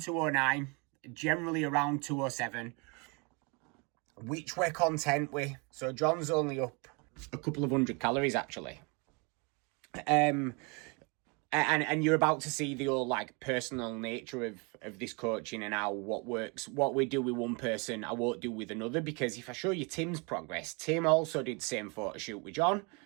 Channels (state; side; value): quieter; left; 31.4 dB